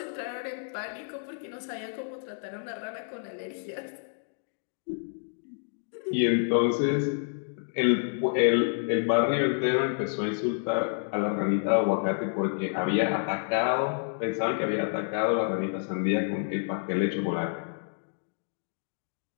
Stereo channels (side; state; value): right; silent; digital silence